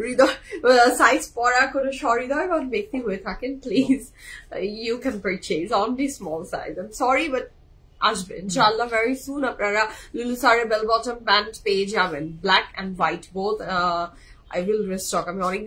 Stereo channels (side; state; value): both; identical; correlation 1.00